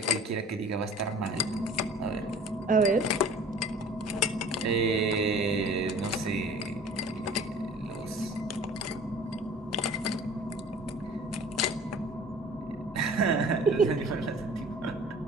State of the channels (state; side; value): normal; both; correlation 0.46